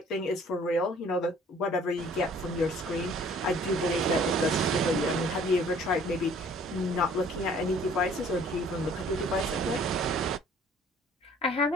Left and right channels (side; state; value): both; normal; correlation 0.55